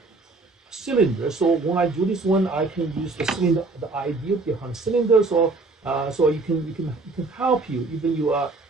cylinder. So when I do this one, I can use the cylinder, the idea behind cylinder. So so you can help you even you are.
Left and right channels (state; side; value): quieter; left; 3.5 dB